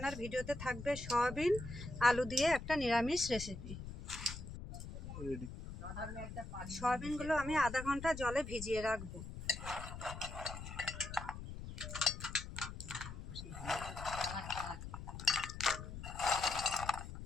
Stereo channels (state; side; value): noise; left; rumble, 9 dB below the sound